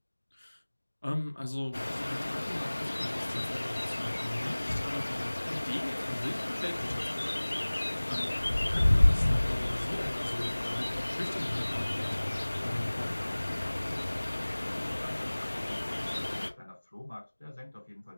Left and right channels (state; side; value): inverted; both; correlation -1.00